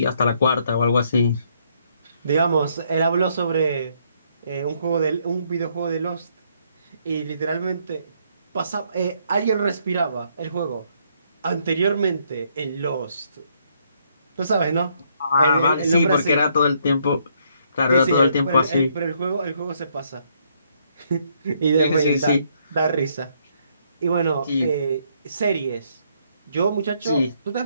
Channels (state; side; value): inverted; both; correlation -0.71